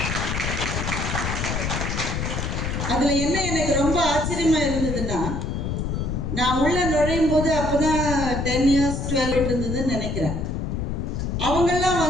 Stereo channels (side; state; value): left; noise; rumble, 2 dB below the sound